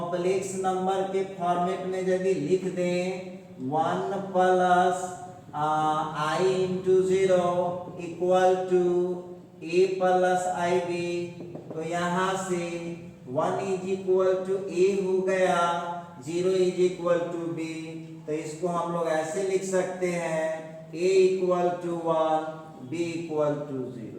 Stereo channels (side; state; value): both; identical; correlation 1.00